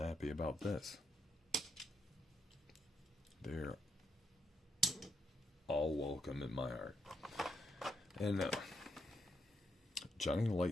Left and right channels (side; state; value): both; normal; correlation 0.79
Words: about this. They're all welcome in my heart. And Johnny